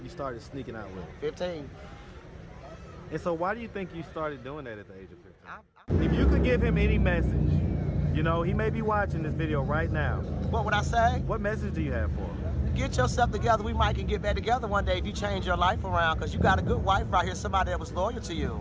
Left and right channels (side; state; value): both; identical; correlation 1.00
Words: started sneaking out with him? 15. And so why do you think you started doing that at the age of 15? If you could give him any message, you know, he may be watching this video right now. What would I say? What message do you have for him? Get yourself together. We might can get back together one day if you change your life around, because you got a good wife right here, somebody that was loyal to